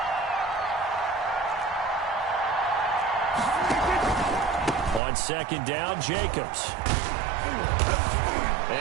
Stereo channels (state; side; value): drops out; left; at 5.0 s